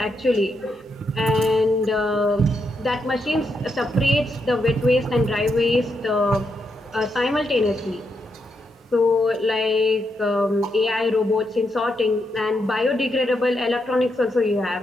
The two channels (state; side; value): normal; both; correlation 0.81